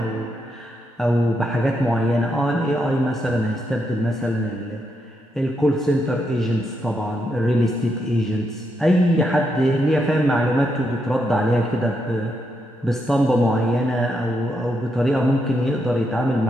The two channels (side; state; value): both; normal; correlation 0.81